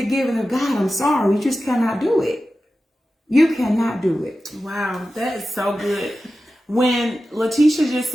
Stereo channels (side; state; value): both; normal; correlation 0.93